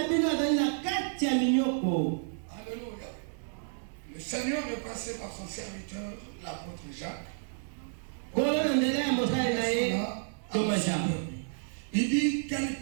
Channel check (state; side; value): silent; left; digital silence